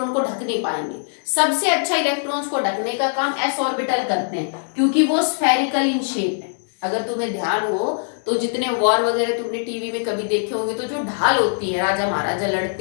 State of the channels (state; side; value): silent; right; 65 dB below the other